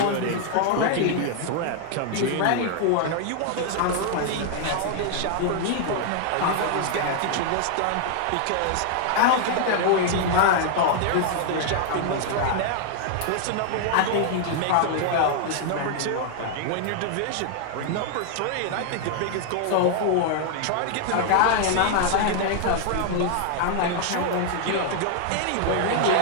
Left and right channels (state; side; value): different; both; correlation 0.00